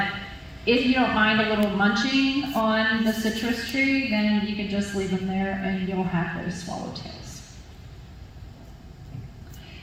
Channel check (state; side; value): identical; both; correlation 1.00